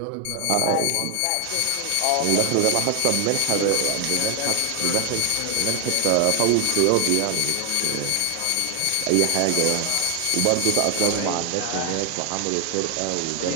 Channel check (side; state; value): both; different; correlation 0.00